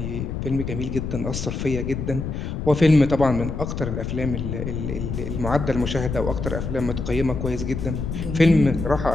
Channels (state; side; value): noise; left; rumble, 4 dB below the sound